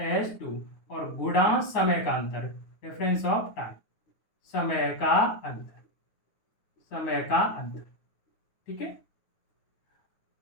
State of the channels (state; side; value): late; right; 9.5 ms